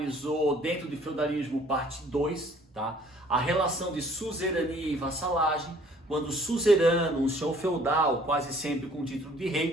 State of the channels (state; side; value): normal; both; correlation 0.57